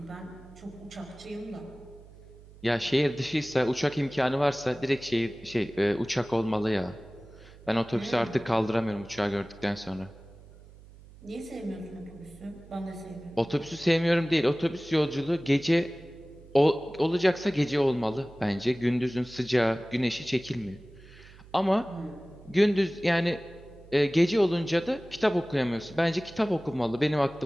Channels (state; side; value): noise; right; hum, 21 dB below the sound